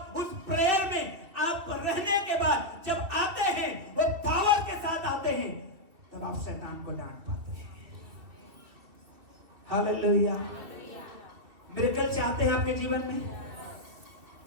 उस प्रेयर में आप रहने के बाद जब आते हैं, वो पावर के साथ आते हैं, तब आप शैतान को डांट पाते हैं। हालेलुया। मिरेकल चाहते हैं आपके जीवन में?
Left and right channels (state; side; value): late; left; 2.7 ms